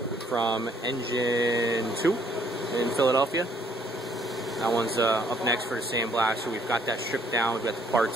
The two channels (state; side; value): normal; both; correlation 0.65